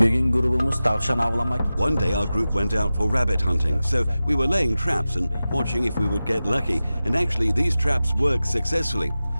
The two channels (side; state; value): both; inverted; correlation -0.95